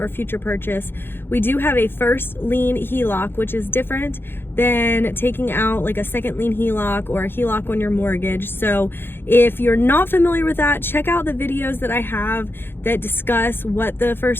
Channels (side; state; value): right; late; 0.10 ms